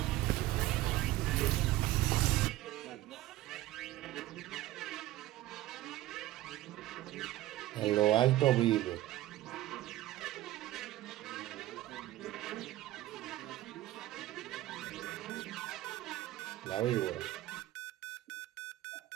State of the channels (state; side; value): quieter; left; 15.5 dB